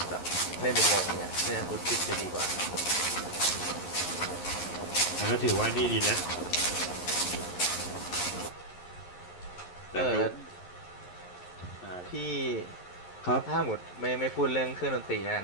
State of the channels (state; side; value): late; right; 11 ms